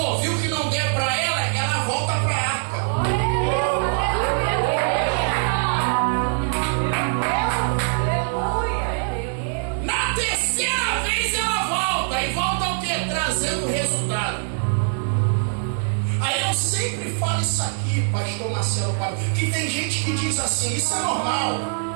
viu que não der para ela volta para a arca. Na terceira vez ela volta. E volta o quê? Trazendo resultado. Aí eu sempre falo isso aqui, pastor Marcelo, que tem gente que diz assim: isso é normal.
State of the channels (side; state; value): left; silent; 61 dB below the other